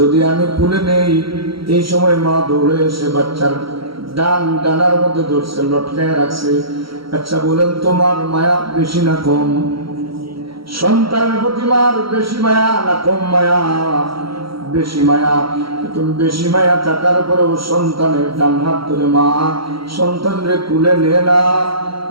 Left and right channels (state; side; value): late; left; 0.75 ms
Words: আমি কুলে নেই, এই সময় মা দৌড়ে এসে বাচ্চার ডানার মধ্যে ধরছে, লটকায় রাখছে। আচ্ছা বলেন, তোমার মায়া বেশি না কম? সন্তানের প্রতি মার বেশি মায়া না কম মায়া? বেশি মায়া। তুমি বেশি মায়া থাকার পরেও সন্তানের ডান হাত ধরে মা সন্তানরে কুলে নিয়ে না